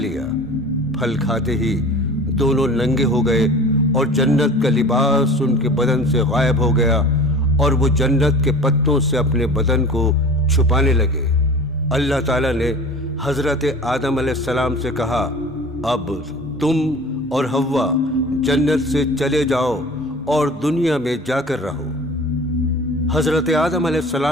پھل کھاتے ہی دونوں ننگے ہو گئے اور جنت کا لباس ان کے بدن سے غائب ہو گیا، اور وہ جنت کے پتوں سے اپنے بدن کو چھپانے لگے۔ اللہ تعالیٰ نے حضرت آدم علیہ السلام سے کہا، اب تم اور حوا جنت سے چلے جاؤ اور دنیا میں جا کر رہو۔ حضرت آدم علیہ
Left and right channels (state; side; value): normal; both; correlation 0.40